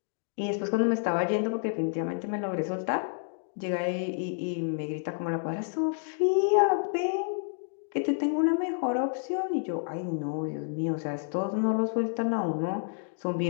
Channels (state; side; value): silent; right; digital silence